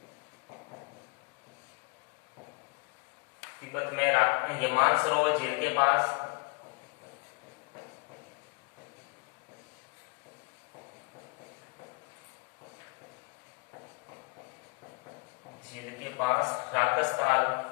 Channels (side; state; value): right; quieter; 34.0 dB